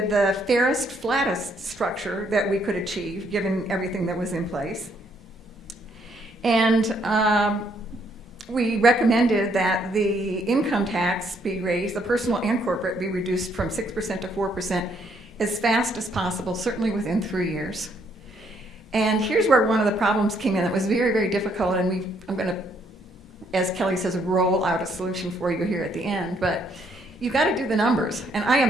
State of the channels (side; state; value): both; normal; correlation 0.70